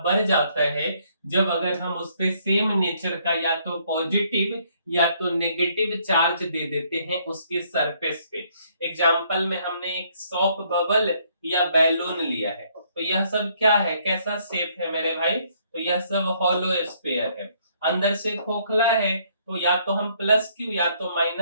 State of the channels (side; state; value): both; inverted; correlation -0.67